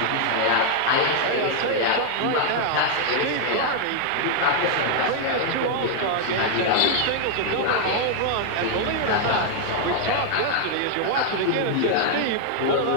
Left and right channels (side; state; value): both; different; correlation 0.00